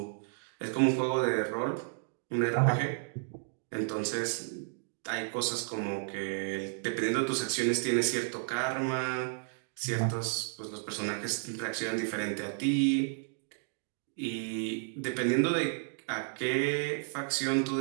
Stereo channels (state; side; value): silent; left; digital silence